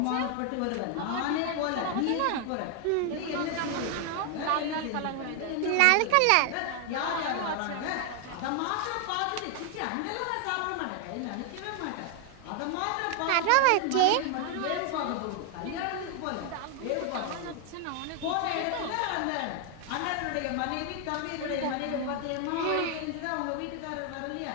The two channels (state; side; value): different; both; correlation 0.00